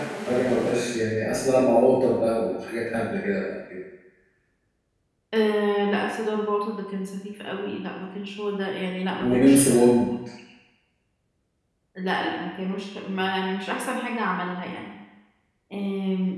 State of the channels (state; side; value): identical; both; correlation 1.00